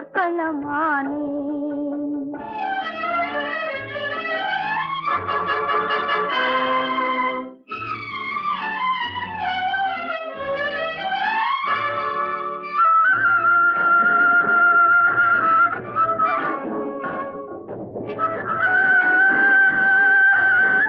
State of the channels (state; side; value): identical; both; correlation 1.00